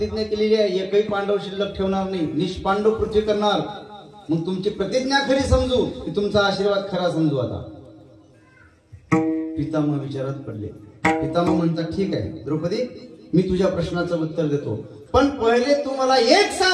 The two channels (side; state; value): both; identical; correlation 1.00